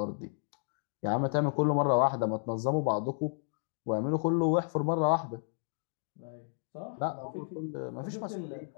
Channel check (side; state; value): right; silent; digital silence